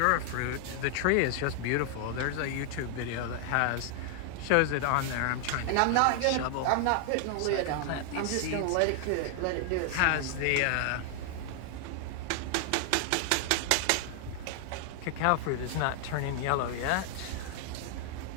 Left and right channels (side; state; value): both; different; correlation 0.00